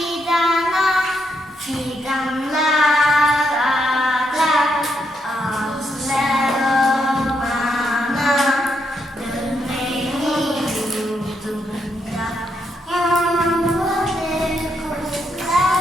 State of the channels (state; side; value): normal; both; correlation 0.79